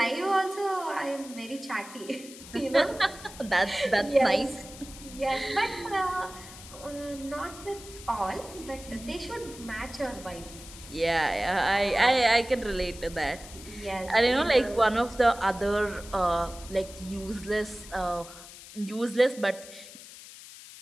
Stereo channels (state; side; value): noise; left; hiss, 16 dB below the sound